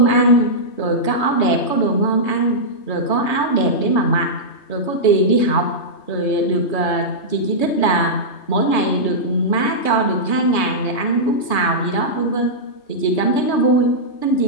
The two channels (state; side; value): late; right; 3.2 ms